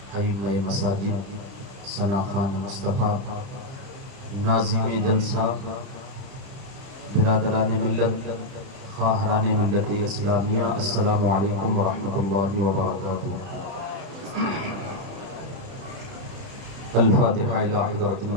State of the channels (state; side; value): late; left; 30 ms